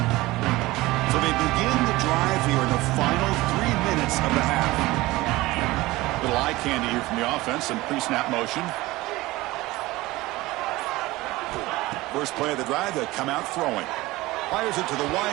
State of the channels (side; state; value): left; quieter; 19.4 dB